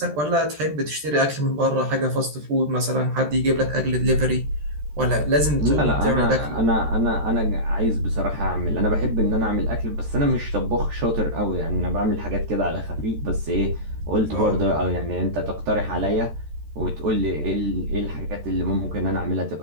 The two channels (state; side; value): late; left; 13 ms